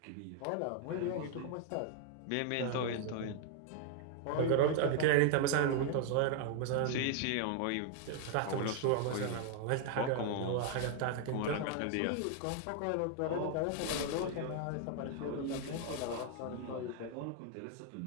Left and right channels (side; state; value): both; different; correlation 0.00